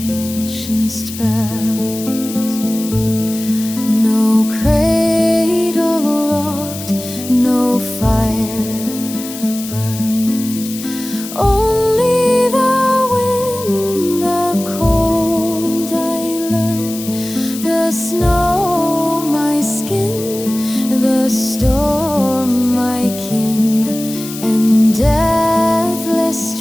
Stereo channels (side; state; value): left; noise; hiss, 11 dB below the sound